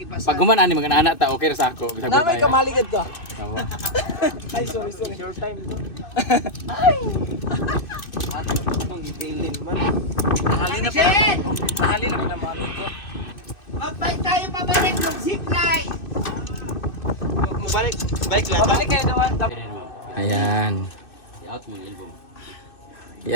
Pag gumanaan ni mga anak ta, okay ra sa ako. Bisag Na may tayo. kamaligad ka. Tawa. Ay, sorry. Short time ito. Nakali na mami ko. Mag-bike tayo pabalik ng zipline. Mabalik. Bike lang. Babalik kayo naman. Ayan.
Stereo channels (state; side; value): late; right; 2.6 ms